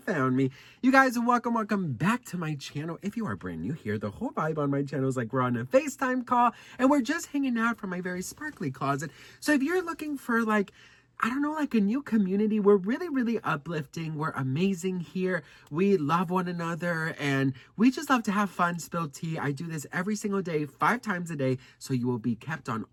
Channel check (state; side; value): identical; both; correlation 1.00